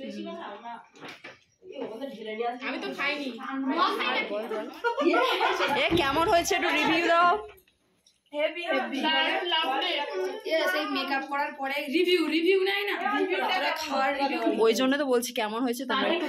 আমি তো খাইনি। এ কেমন হয়েছে একটু রিভিউ দাও। হেভি হেভি সেই মেকআপ করার পরে রিভিউ নাই না, রিভিউটা খাওয়ার রিভিউ। ওই জন্য তো বলছি কেমন হয়েছে তোমরা একটু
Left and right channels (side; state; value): both; identical; correlation 1.00